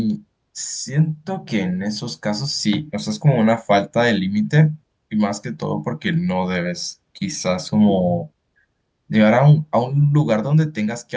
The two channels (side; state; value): both; identical; correlation 1.00